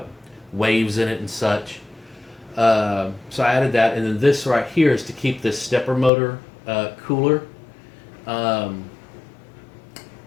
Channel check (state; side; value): drops out; right; at 6.1 s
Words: waves in it and such. So I added that, and then this right here is to keep this stepper motor cooler. When